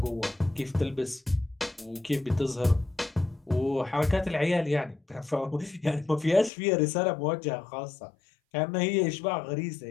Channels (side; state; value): right; drops out; at 6.5 s